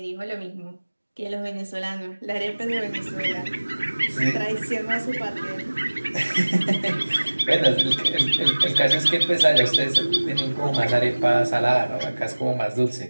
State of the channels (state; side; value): inverted; both; correlation -1.00